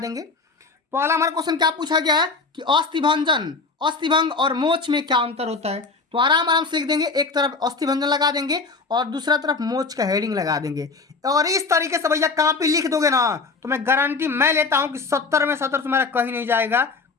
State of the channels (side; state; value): right; quieter; 4.2 dB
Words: पहला हमारा क्वेश्चन क्या पूछा गया है कि अस्थिभंजन, अस्थिभंग और मोच में क्या अंतर होता है? तो आराम आराम से लिख देंगे, एक तरफ अस्थिभंजन लगा देंगे और दूसरा तरफ मोच का हेडिंग लगा देंगे। और इस तरीके से भैया कॉपी लिख दोगे ना, तो मैं गारंटी मैं लेता हूं कि 70 में 70 तुम्हारा कहीं नहीं जाएगा,